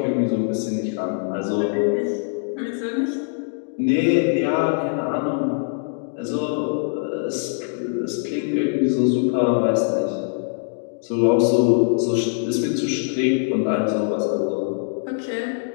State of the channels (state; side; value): silent; right; digital silence